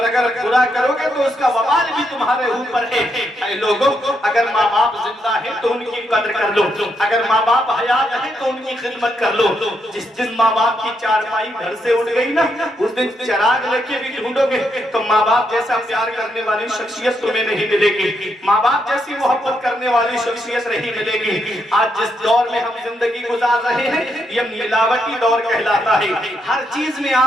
اگر برا کرو گے تو اس کا وبال بھی تمہارے اوپر ہے. اے لوگوں، اگر ماں باپ زندہ ہے تو ان کی قدر کر لو، اگر ماں باپ حیات ہے تو ان کی خدمت کر لو. جس دن ماں باپ کی چارپائی گھر سے اٹھ گئی نا، اس دن چراغ لے کے بھی ڈھونڈو گے تو ماں باپ جیسا پیار کرنے والی شخصیت تمہیں نہیں ملے گی، ماں باپ جیسی محبت کرنے والی شخصیت نہیں ملے گی. آج جس دور میں ہم زندگی گزار رہے ہیں یہ ملاوٹی دور کہلاتا ہے. ہر چیز میں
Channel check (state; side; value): normal; both; correlation 0.79